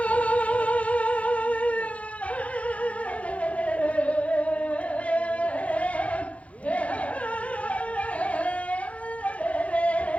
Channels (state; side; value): late; right; 0.064 ms